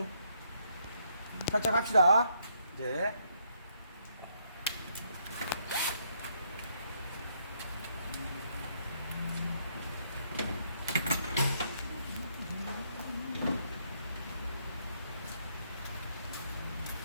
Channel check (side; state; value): both; inverted; correlation -0.73